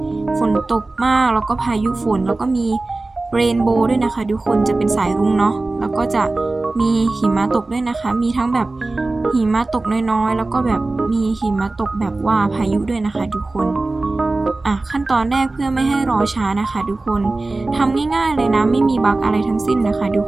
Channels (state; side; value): quieter; left; 3.2 dB